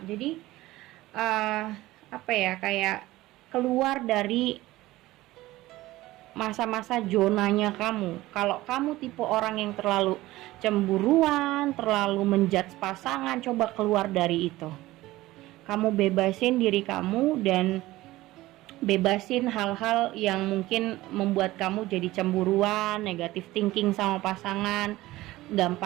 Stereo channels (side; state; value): left; quieter; 17.5 dB